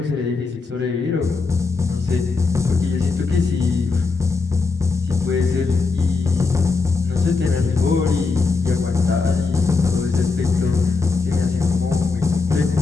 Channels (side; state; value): right; quieter; 4.3 dB